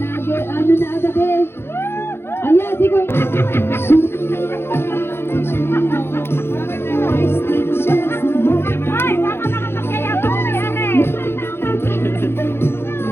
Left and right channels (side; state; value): right; late; 0.11 ms